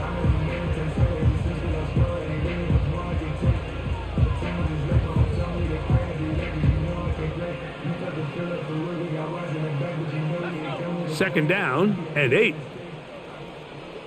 Second down and 8.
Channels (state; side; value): identical; both; correlation 1.00